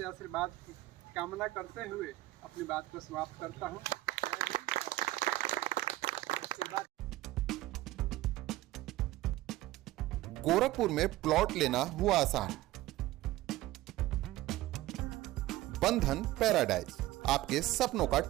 आशीर्वाद की कामना करते हुए अपनी बात को समाप्त करता हूँ। गोरखपुर में प्लॉट लेना हुआ आसान। बंधन पैराडाइज, आपके सपनों का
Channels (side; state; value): left; quieter; 16.6 dB